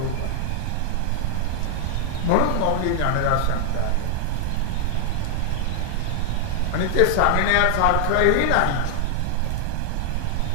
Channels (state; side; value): different; both; correlation 0.00